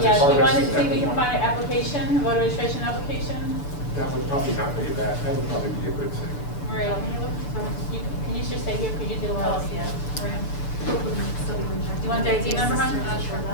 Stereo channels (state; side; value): late; right; 6.9 ms